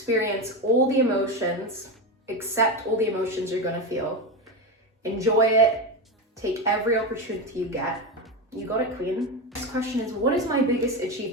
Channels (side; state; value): both; normal; correlation 0.16